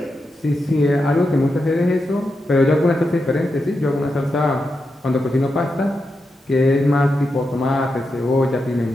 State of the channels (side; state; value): both; normal; correlation 0.87